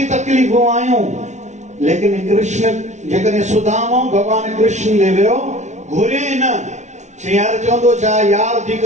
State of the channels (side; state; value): left; late; 0.33 ms